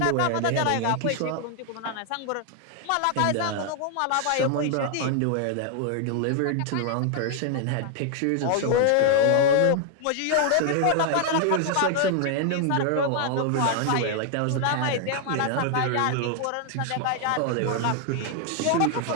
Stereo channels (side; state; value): both; different; correlation 0.00